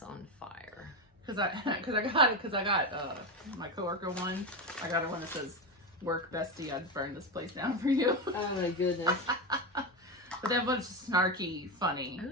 on Fire. Because I got my coworker one. I got her one that says, "Work bestie, I'd burn this place down for you." Oh my goodness. But that one's snarky, funny.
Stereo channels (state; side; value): normal; both; correlation 0.14